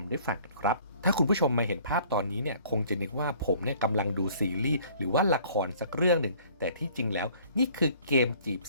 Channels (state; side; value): inverted; both; correlation -0.55